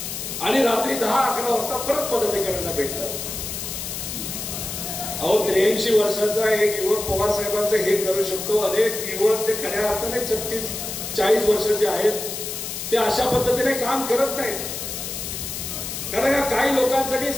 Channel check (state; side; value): noise; left; hiss, 6 dB below the sound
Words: आणि रात्री 10-11 वाजता परत पदाधिकाऱ्यांना भेटतात. अहो 83 वर्षाचा एक युवक पवार साहेबांचं हे करू शकतो. अनेक युवक ते खऱ्या अर्थाने 36-40 वर्षाचे आहेत, ते अशा पद्धतीने काम करत नाहीत. कारण काही लोकांसाठी